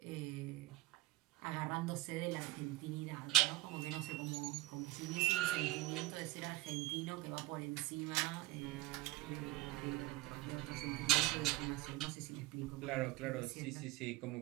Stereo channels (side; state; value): left; quieter; 18.8 dB